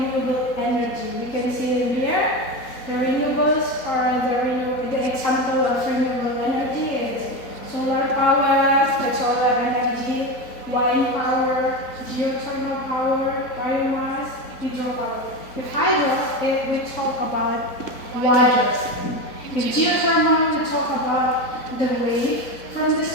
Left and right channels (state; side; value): late; right; 4.0 ms